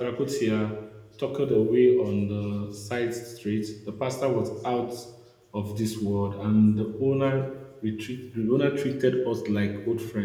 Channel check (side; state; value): both; identical; correlation 1.00